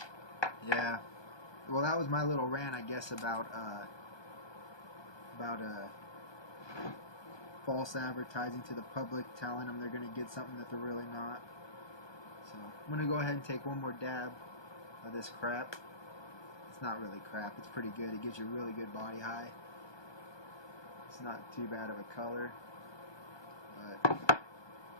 yeah. Well, that was my little rant, I guess, about false advertising to the public, telling them they're going to get something that they're really not. So I'm going to go ahead and take one more dab of this crap. It's not really crap. It's pretty good. It gives you a really good body high. It's not too bad of a color. But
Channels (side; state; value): right; late; 1.2 ms